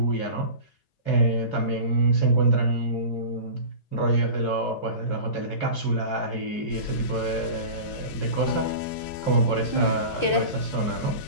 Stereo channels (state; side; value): late; right; 2.6 ms